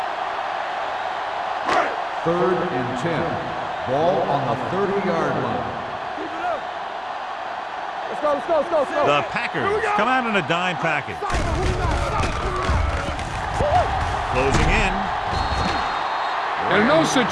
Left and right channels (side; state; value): both; identical; correlation 1.00